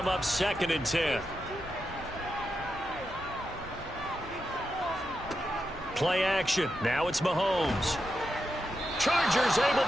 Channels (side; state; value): both; normal; correlation 0.87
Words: up 2nd and 10. Play action. Now it's Mahomes. Chargers able